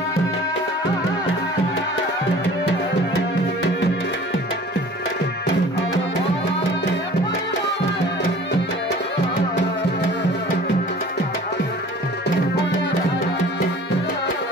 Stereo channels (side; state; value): both; normal; correlation 0.46